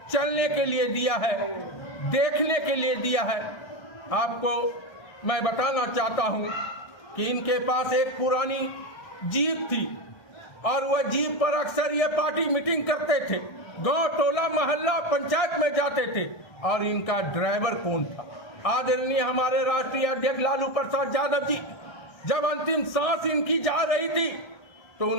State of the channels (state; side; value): late; right; 1.3 ms